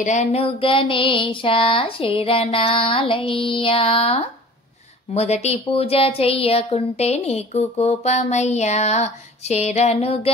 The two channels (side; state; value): both; normal; correlation 0.43